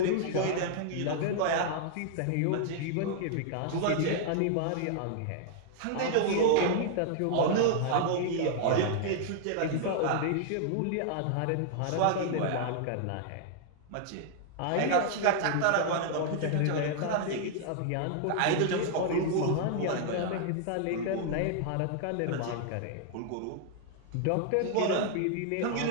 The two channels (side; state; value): both; different; correlation 0.00